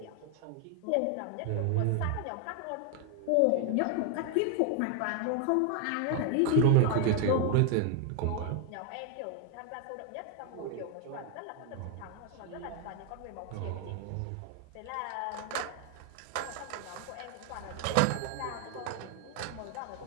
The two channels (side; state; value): both; different; correlation 0.01